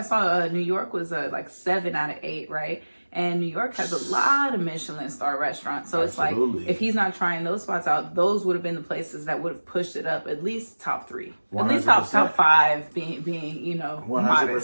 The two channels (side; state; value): both; inverted; correlation -1.00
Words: saw New York was like 7 out of 8, right? And New York has a lot of Michelin star restaurants. So it's like, if he's not trying those spots out, those would have been the places that would have pushed it up at least top 3. 100%. At least top 5 being you know, 100%,